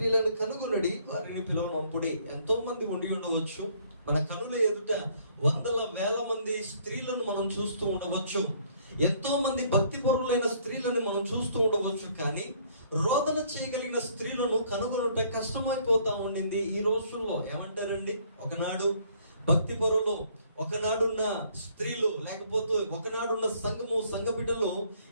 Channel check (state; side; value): inverted; both; correlation -0.62